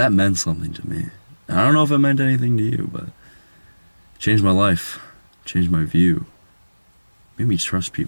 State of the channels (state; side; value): inverted; both; correlation -1.00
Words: meant something to me. And I don't know if it meant anything to you, but it changed my life. Changed my view. Made me trust